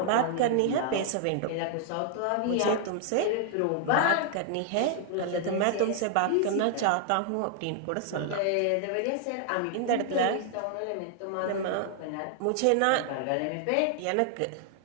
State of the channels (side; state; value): both; different; correlation 0.00